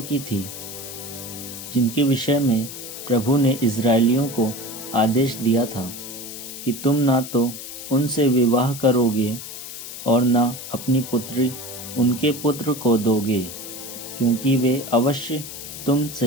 की थी जिनके विषय में प्रभु ने इज़राइलियों को आदेश दिया था कि तुम ना तो उनसे विवाह करोगे और ना अपनी पुत्री उनके पुत्र को दोगे, क्योंकि वे अवश्य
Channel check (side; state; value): left; noise; hiss, 10 dB below the sound